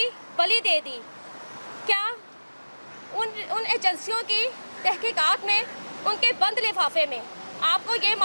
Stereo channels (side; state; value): both; inverted; correlation -1.00